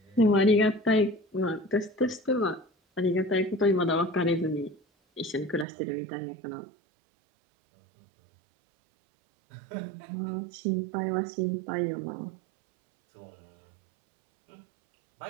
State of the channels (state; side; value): drops out; left; at 5.7 s